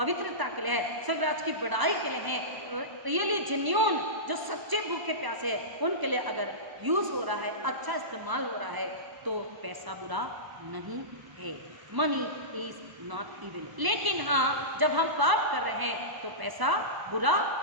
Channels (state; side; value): late; left; 1.0 ms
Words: के लिए है, स्वर्गराज की बढ़ाई के लिए है, रियली जेन्युइन जो सच्चे भूखे प्यासे है उनके लिए अगर यूज हो रहा है, अच्छा इस्तेमाल हो रहा है, तो पैसा बुरा नहीं है। Money is not evil. लेकिन हाँ, जब हम पाप कर रहे हैं तो पैसा बुरा